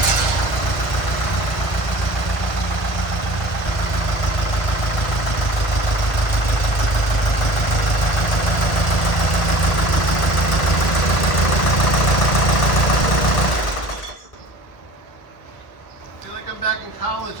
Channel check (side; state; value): right; late; 1.5 ms